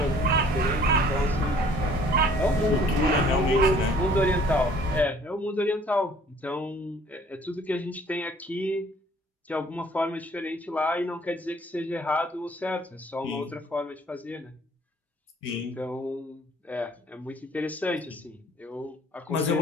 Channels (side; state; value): both; normal; correlation 0.56